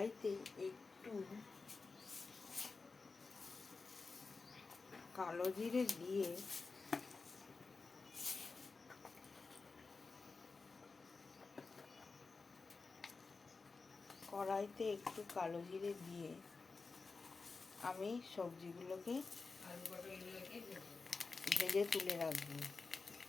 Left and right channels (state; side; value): quieter; right; 4.2 dB